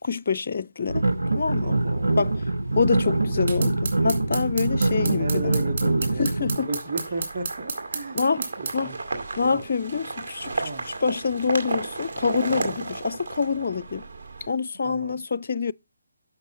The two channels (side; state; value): both; inverted; correlation -0.83